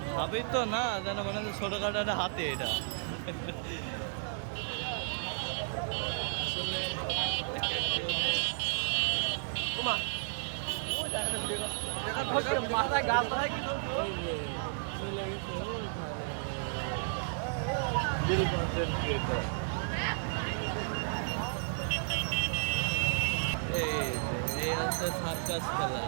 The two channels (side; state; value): left; silent; digital silence